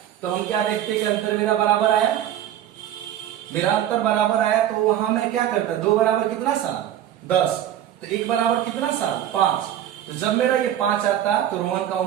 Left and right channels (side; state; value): left; quieter; 11.4 dB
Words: तो हम क्या देखते कि अंतर मेरा बराबर आया। मेरा अंतर बराबर आया तो वहां मैं क्या करता? 2 बराबर कितना साल? 10। तो 1 बराबर कितना साल? 5। तो जब मेरा ये 5 आता तो रोहन का